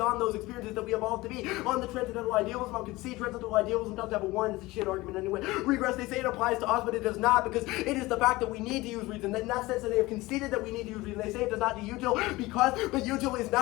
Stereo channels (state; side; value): quieter; right; 20.2 dB